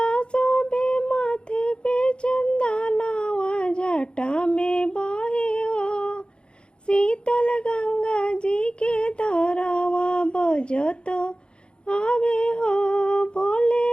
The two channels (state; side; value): late; right; 0.053 ms